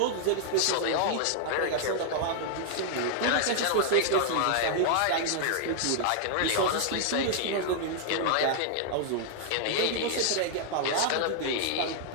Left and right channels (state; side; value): different; both; correlation -0.01